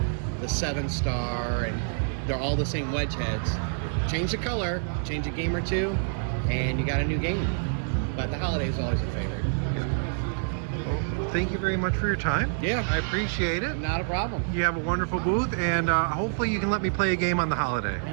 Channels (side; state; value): left; silent; digital silence